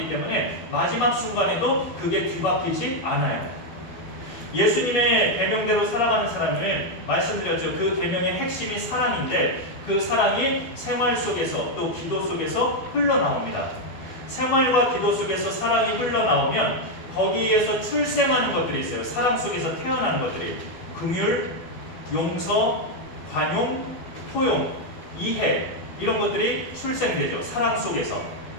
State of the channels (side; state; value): right; late; 12 ms